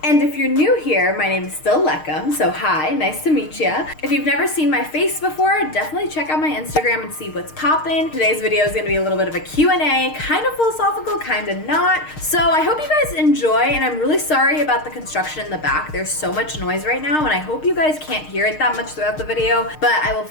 And if you're new here, my name is still Lekem, so hi, nice to meet ya. If you've never seen my face before, definitely check out my Instagram and see what's poppin'. Today's video is gonna be a little bit of a Q&A, kind of philosophical, kind of not. So I hope you guys enjoy, and I'm really sorry about the construction in the back. There's so much noise right now, and I hope you guys can't hear it that much throughout the video, but I will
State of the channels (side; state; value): right; late; 6.5 ms